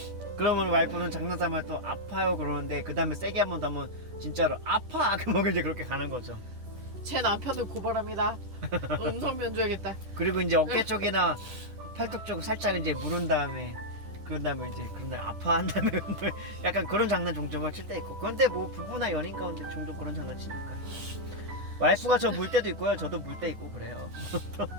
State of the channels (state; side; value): late; left; 10 ms